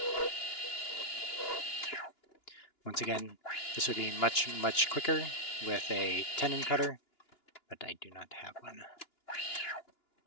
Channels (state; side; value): late; right; 2.9 ms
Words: Once again, this would be much quicker with a tenon cutter, but I do not have one.